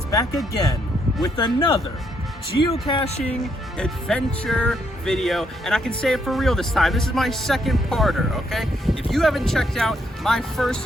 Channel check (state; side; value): normal; both; correlation 0.74